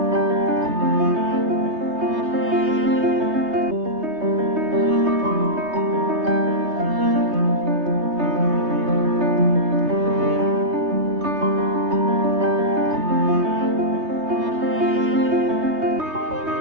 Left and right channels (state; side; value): late; left; 3.2 ms